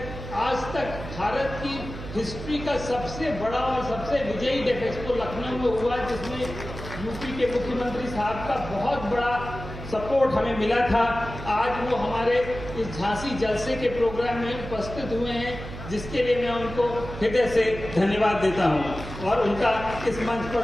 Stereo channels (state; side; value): noise; right; hum, 10 dB below the sound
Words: आज तक भारत की हिस्ट्री का सबसे बड़ा और सबसे विजयी डेफ एक्सपो लखनऊ में हुआ, जिसमें यूपी के मुख्यमंत्री साहब का बहुत बड़ा सपोर्ट हमें मिला था। आज वो हमारे इस झांसी जलसे के प्रोग्राम में उपस्थित हुए हैं, जिसके लिए मैं उनको हृदय से धन्यवाद देता हूं और उनका इस मंच